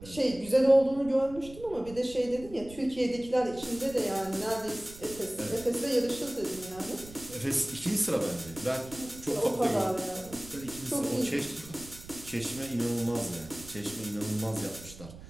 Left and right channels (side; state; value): right; noise; rumble, 17 dB below the sound